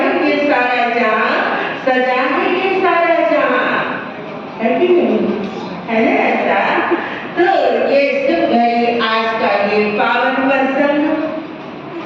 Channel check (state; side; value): identical; both; correlation 1.00